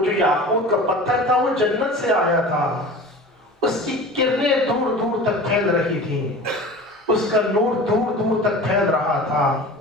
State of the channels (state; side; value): normal; both; correlation 0.37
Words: یاقوت کا پتھر تھا وہ جنت سے آیا تھا، اس کی کرنیں دور دور تک پھیل رہی تھیں، اس کا نور دور دور تک پھیل رہا تھا۔